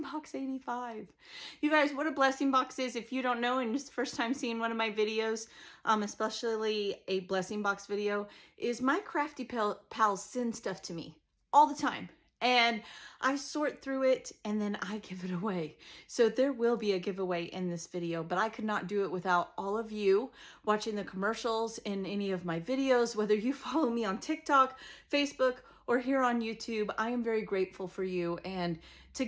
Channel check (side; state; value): both; identical; correlation 1.00